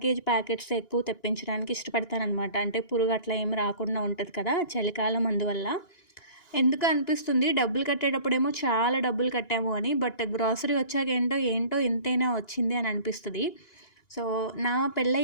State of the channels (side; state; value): right; late; 1.9 ms